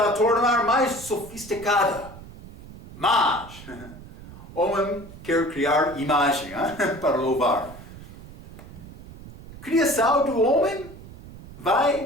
a tornar mais sofisticada. Mas, homem quer criar imagem para louvar. Criação do homem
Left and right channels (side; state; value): right; noise; rumble, 17 dB below the sound